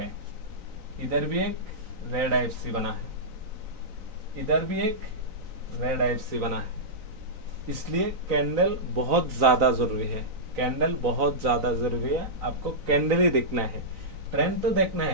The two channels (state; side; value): late; left; 3.9 ms